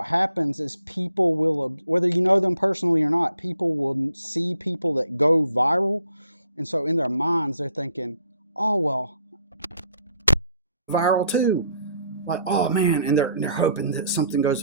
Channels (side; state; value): both; inverted; correlation -0.66